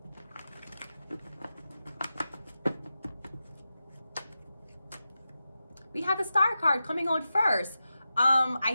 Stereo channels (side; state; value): both; inverted; correlation -0.92